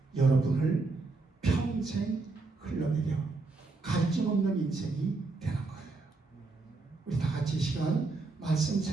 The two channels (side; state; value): left; quieter; 3.7 dB